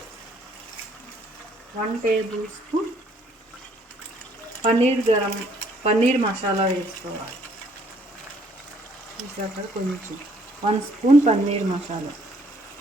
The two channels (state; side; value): normal; both; correlation 0.64